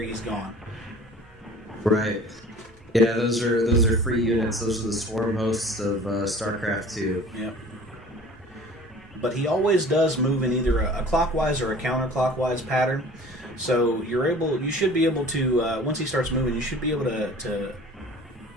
gone. Right. Yeah, those are free units. Those are the swarm hosts of StarCraft 2. Yep. But he always does move in either a clockwise or a counterclockwise pattern. So you should be able to, once he starts moving, you should be able to,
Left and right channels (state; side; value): normal; both; correlation 0.45